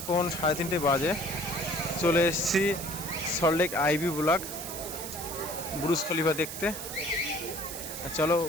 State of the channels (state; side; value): noise; right; hiss, 8 dB below the sound